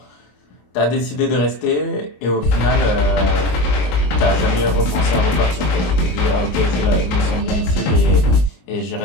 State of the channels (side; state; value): right; late; 21 ms